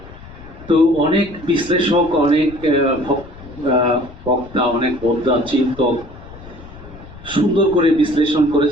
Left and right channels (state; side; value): noise; left; rumble, 18 dB below the sound